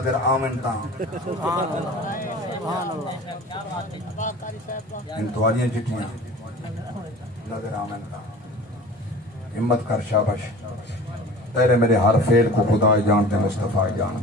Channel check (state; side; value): normal; both; correlation 0.40